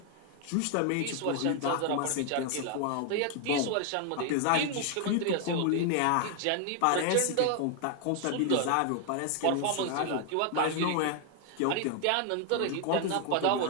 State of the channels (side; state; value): both; different; correlation 0.00